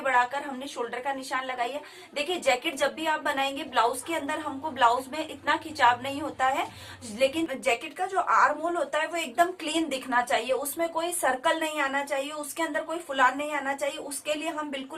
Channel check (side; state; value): both; identical; correlation 1.00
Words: बढ़ाकर हमने शोल्डर का निशान लगाई है। देखिए, जैकेट जब भी आप बनाएंगे, ब्लाउज के अंदर हमको ब्लाउज में इतना खिंचाव नहीं होता है, लेकिन जैकेट का जो आर्म होल होता है वो एकदम क्लीन दिखना चाहिए, उसमें कोई सर्कल नहीं आना चाहिए, उसके अंदर कोई फुलान नहीं आना चाहिए। उसके लिए हम